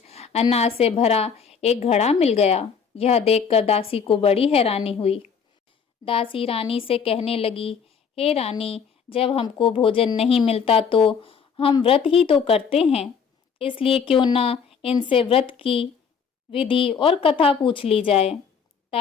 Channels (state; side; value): quieter; right; 6.5 dB